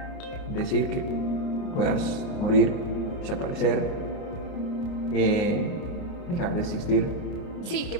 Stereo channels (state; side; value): late; right; 29 ms